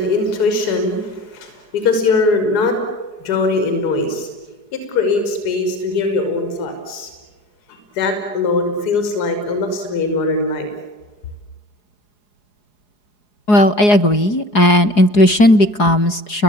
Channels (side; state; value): right; late; 4.8 ms